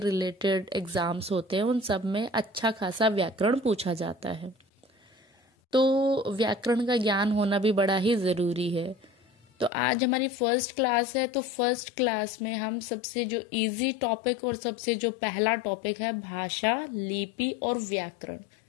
एग्जाम्स होते हैं उन सब में अच्छा खासा व्याकरण पूछा जाता है। तो व्याकरण का ज्ञान होना भी बड़ा ही जरूरी है। तो आज हमारी फर्स्ट क्लास है, तो फर्स्ट क्लास में हम सबसे जो इजी टॉपिक और सबसे जो पहला टॉपिक है भाषा, लिपि और व्याकरण,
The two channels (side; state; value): right; drops out; at 9.7 s